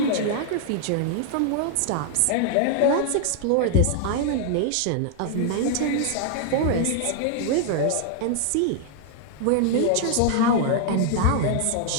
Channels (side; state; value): both; different; correlation 0.00